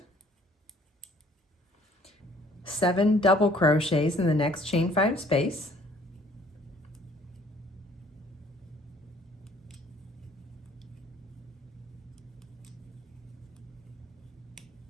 7 double crochets in the next chain 5 space,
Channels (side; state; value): both; normal; correlation 0.58